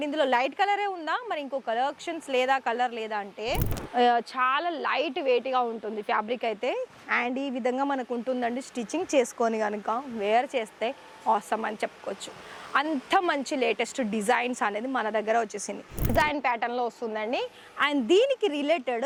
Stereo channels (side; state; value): both; identical; correlation 1.00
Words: ఇందులో లైట్ కలరే ఉందా, మరి ఇంకో కలెక్షన్స్ లేదా, కలర్ లేదా అంటే చాలా లైట్ వెయిట్గా ఉంటుంది ఫ్యాబ్రిక్ అయితే. అండ్ ఈ విధంగా మనకు ఉంటుందండి. స్టిచ్చింగ్ చేసుకొని కనుక వేర్ చేస్తే ఆసమ్ అని చెప్పుకోవచ్చు. అంత మంచి లేటెస్ట్ డిజైన్స్ అనేది మన దగ్గర వచ్చేసింది. డిజైన్ ప్యాటర్న్లో వస్తుందండి. అండ్ దీనికి